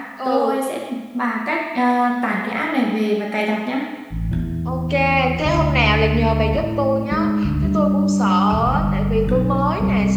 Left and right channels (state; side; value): identical; both; correlation 1.00